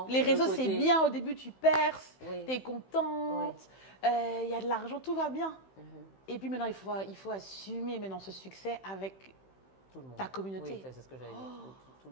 les le réseaux côté- c'est bien. Au début, tu perces, Oui. tu es contente, il y a de l'argent, tout va bien. Mhm. Et puis maintenant, il faut assumer maintenant ce succès avec Tout le monde. ta communauté. Oui, c'est ce que j'allais dire. Tout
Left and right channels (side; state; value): right; late; 15 ms